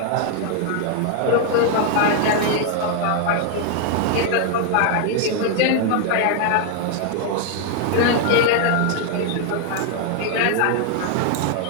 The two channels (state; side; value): different; both; correlation 0.00